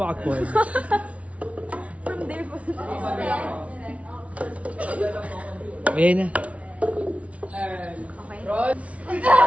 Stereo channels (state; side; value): late; left; 0.065 ms